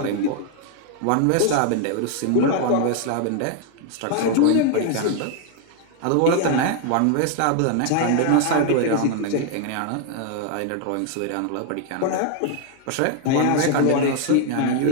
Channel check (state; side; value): different; both; correlation 0.00